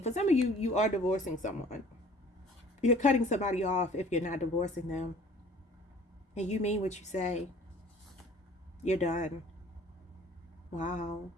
For some of you, you are divorcing someone. You're cutting somebody off if you're not divorcing them. And you mean what you say. You're done. Wow.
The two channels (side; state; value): both; normal; correlation 0.51